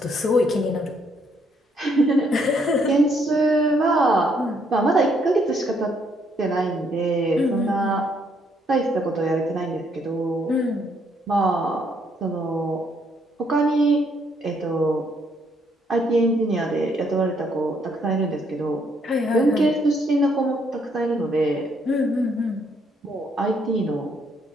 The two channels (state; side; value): normal; both; correlation 0.70